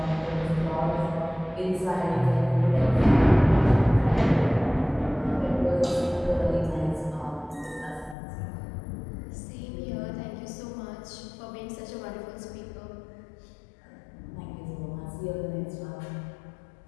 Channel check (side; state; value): right; drops out; at 8.2 s